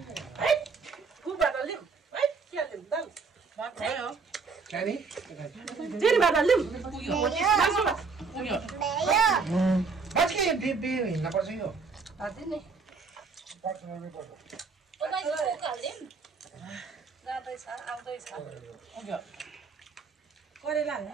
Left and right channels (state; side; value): quieter; left; 4.8 dB